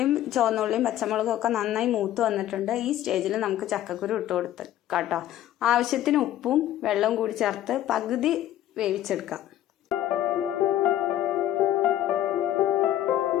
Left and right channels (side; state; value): right; quieter; 12.5 dB